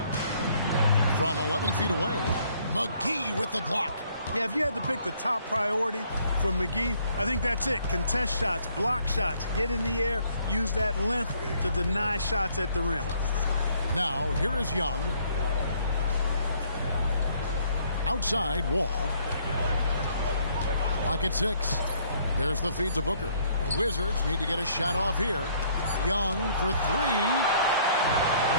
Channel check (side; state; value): both; inverted; correlation -0.64